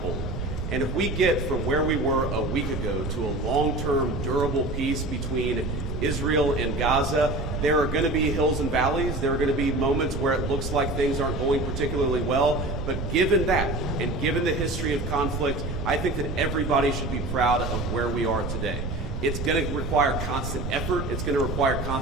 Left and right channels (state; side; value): noise; right; rumble, 4 dB below the sound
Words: hold. And if we get from where we were a week ago to a long-term, durable peace between Israel and Gaza, there are going to be hills and valleys. There are going to be moments where it looks like things aren't going particularly well. But given that, and given the history of conflict, I think that everybody should be proud of where we are today. It's going to require constant effort. It's going to require